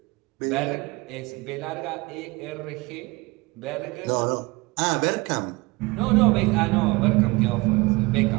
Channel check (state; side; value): quieter; left; 23.8 dB